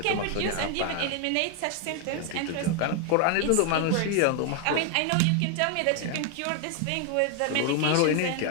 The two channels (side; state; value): both; different; correlation 0.01